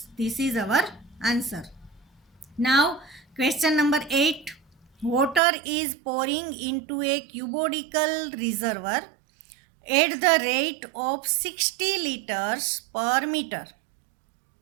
This is our answer. Now question number 8. Water is pouring into a cubodical reservoir at the rate of 60 liters per meter.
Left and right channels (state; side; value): drops out; left; at 5.4 s